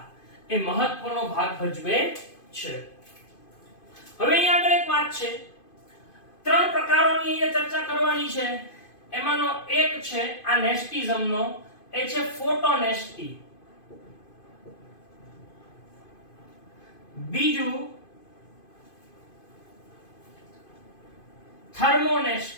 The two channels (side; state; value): right; late; 2.5 ms